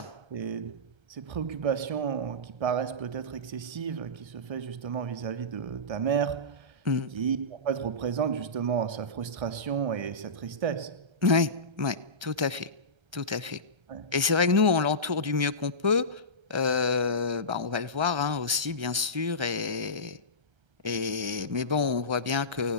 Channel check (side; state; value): left; late; 1.3 ms